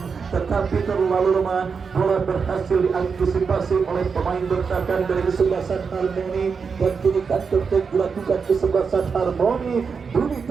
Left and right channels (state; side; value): quieter; left; 5.6 dB